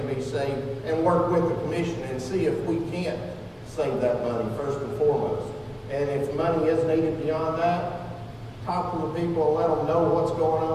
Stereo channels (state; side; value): identical; both; correlation 1.00